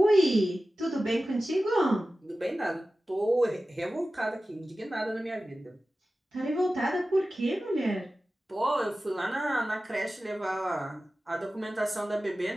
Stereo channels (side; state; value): both; normal; correlation 0.95